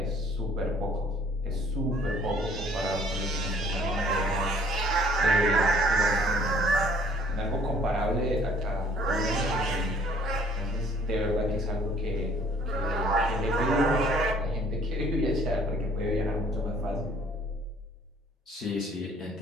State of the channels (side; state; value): both; normal; correlation 0.58